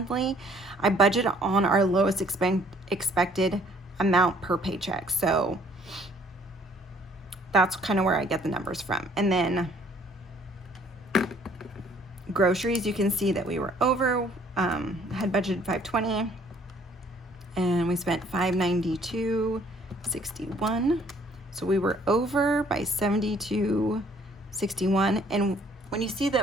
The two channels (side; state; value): both; normal; correlation 0.60